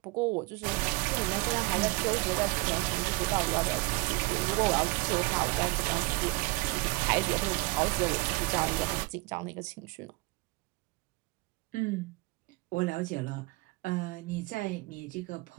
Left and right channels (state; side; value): quieter; left; 25.1 dB